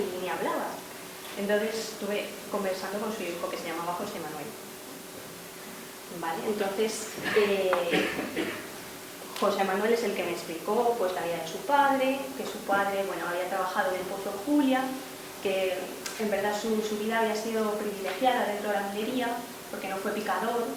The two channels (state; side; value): identical; both; correlation 1.00